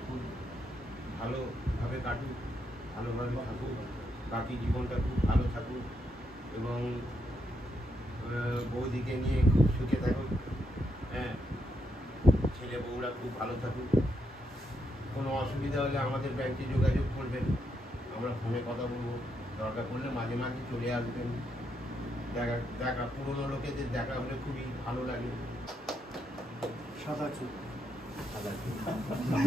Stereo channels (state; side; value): normal; both; correlation 0.79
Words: খুব ভালোভাবে কাটুক, ভালোভাবে থাকুক, বাকি জীবনটা খুব ভালো থাকুক এবং বৌদিকে নিয়ে খুব সুখে থাকুক। হ্যাঁ ছেলে বউরা খুব ভালো থাকুক। কোনো অসুবিধা হলে আমাদের ব্যাংকে যোগাযোগ করবেন, আমরা ফোনে কথা বলবো। দরকার পড়লে মাঝে মাঝে চলে আসবেন। দেখা পুরোনো লোকেদের দেখা হলে খুবই ভালো লাগে। সাদা চুল